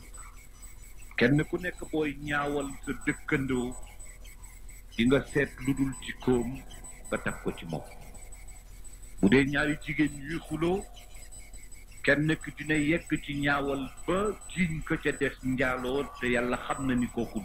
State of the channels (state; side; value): identical; both; correlation 1.00